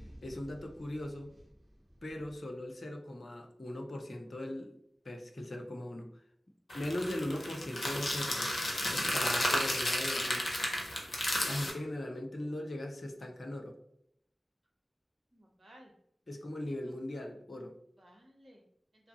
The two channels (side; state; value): both; normal; correlation 0.93